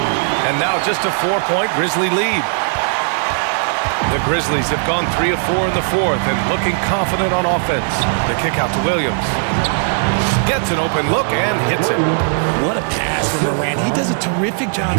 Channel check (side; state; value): left; silent; 55 dB below the other